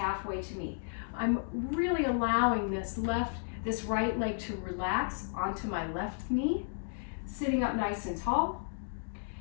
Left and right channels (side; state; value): right; silent; digital silence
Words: to me. I'm really allowing this right leg to relax onto my left knee, sitting up nice and tall.